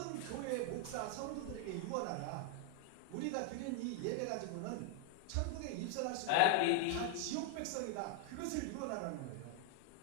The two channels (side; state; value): both; different; correlation 0.00